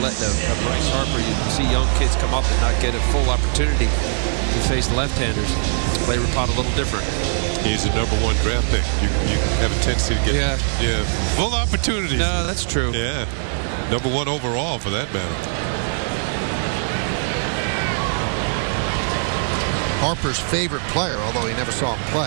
a Bryce Harper. You see young kids come up and not get a full opportunity to face left-handers. Play Rapata a little different. He's a #1 draft pick. You have a tendency to get full opportunities. No, that's true. Yeah, #1 overall for that matter. Harper's favorite player, although he never saw him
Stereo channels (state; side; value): silent; left; digital silence